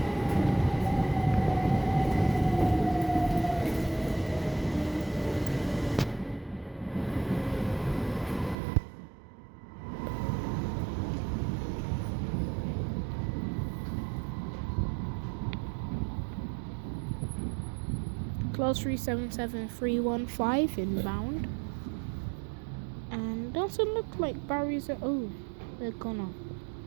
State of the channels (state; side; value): drops out; left; at 8.6 s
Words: Class 377315 inbound. And doesn't look like barriers are. Oh, they're gone.